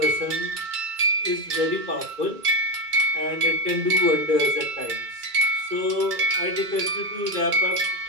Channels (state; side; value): late; left; 2.3 ms